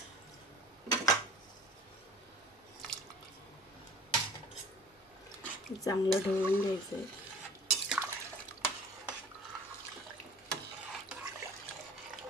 चांगलं ढवळून घ्यायचं आहे.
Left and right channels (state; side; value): normal; both; correlation 0.44